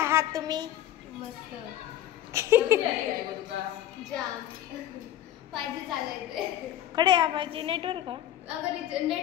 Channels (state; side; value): quieter; right; 12.2 dB